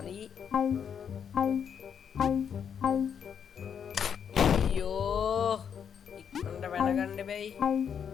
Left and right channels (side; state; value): right; quieter; 7.7 dB